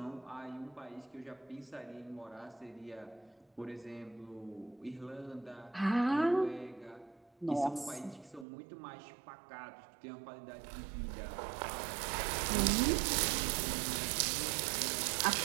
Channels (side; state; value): left; drops out; at 8.5 s